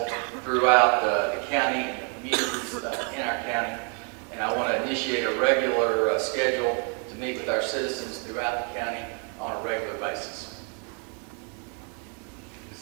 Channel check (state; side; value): quieter; left; 39.0 dB